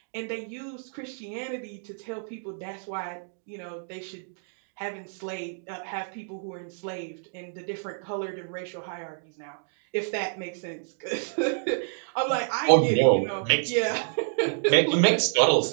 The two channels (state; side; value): silent; left; digital silence